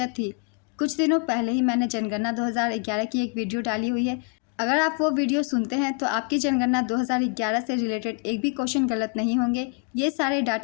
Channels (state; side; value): quieter; right; 36.3 dB